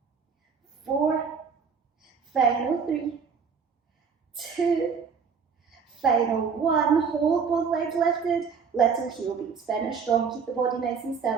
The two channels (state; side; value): quieter; left; 6.0 dB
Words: 4, final 3, 2, final 1, hold both legs lifted, little heel beats, finish strong, keep the body nice and